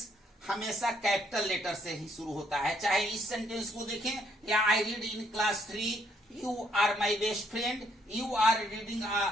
हमेशा कैपिटल लेटर से ही शुरू होता है। चाहे इस सेंटेंस को देखें, या I read in class 3, you are my best friend, you are reading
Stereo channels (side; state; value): both; normal; correlation 0.70